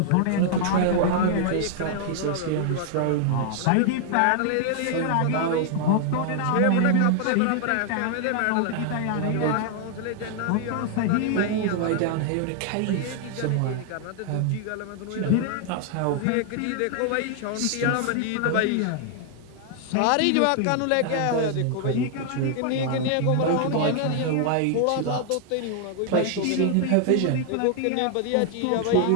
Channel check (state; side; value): different; both; correlation 0.00